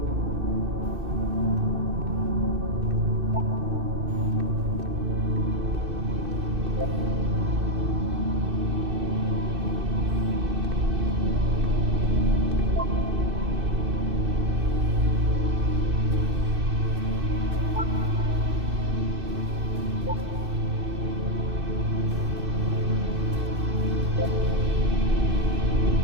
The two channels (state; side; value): late; left; 2.6 ms